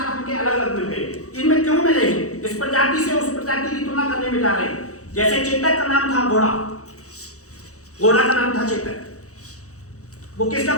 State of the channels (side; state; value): right; late; 0.65 ms